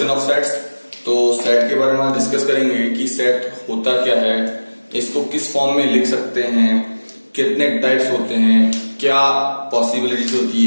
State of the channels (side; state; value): both; inverted; correlation -1.00